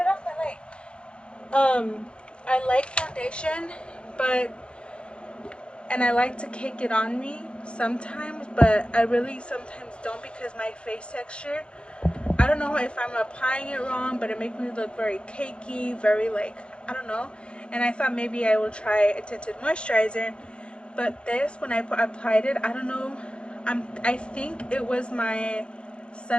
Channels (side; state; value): right; late; 0.056 ms